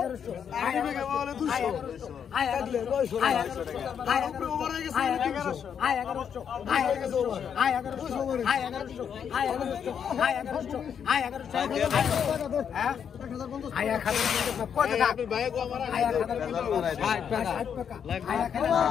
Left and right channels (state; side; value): quieter; right; 7.8 dB